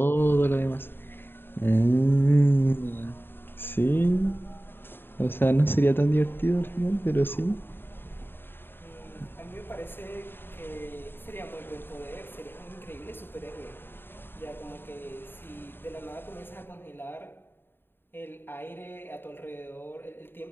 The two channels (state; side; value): late; right; 0.10 ms